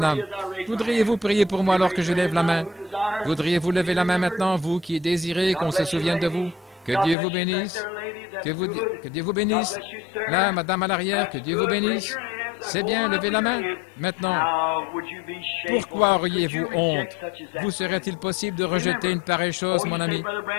Voudriez-vous prier pour moi alors que je lève la main? Voudriez-vous lever la main maintenant, vous qui désirez qu'on se souvienne de vous? Que Dieu vous bénisse. Que Dieu vous bénisse. Là, madame à l'arrière, que Dieu vous bénisse. C'est bien, levez la main. Maintenant, pourquoi auriez-vous honte? Vous serait-il possible de rejeter une pareille chose, mon ami?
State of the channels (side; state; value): right; drops out; at 7.2 s